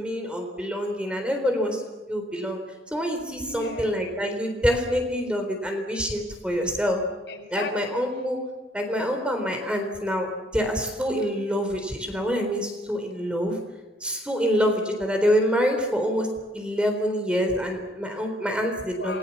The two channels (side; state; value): both; normal; correlation 0.65